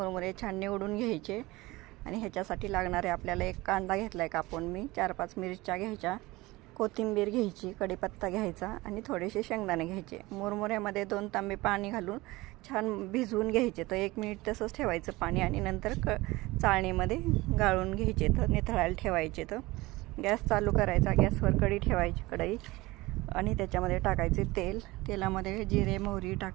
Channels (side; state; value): left; quieter; 20.6 dB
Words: छान निवडून घ्यायचे आणि ह्याच्यासाठी लागणारे आपल्याला एक कांदा घेतला आहे कापून मी, 4-5 मिरच्या घ्यायच्या, कोथिंबीर घ्यायची, कढीपत्ता घ्यायचा आणि थोडेसे शेंगदाणे घ्यायचे. मुरमुऱ्यामध्ये 2 तांबे पाणी घालून छान भिजवून घ्यायचे. तर 1 मिनिट तसंच ठेवायचं पाणी आणि नंतर चाळणीमध्ये गाळून घ्यायचे, तर निथळायला ठेवायचे. तर गॅस चालू करायचा, गॅसवर कढई ठेवायची, कढई आणि त्याच्यामध्ये टाकायचे तेल. तेलामध्ये जिरे मोहरी